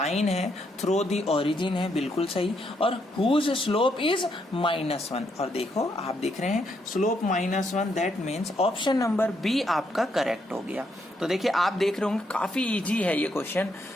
है थ्रो दी ओरिजिन है, बिल्कुल सही, और हुज स्लोप इज -1। और देखो आप देख रहे हैं slope -1, that means option number b आपका करेक्ट हो गया। तो देखिए आप देख रहे होंगे काफी इजी है ये क्वेश्चन,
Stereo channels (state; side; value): normal; both; correlation 0.76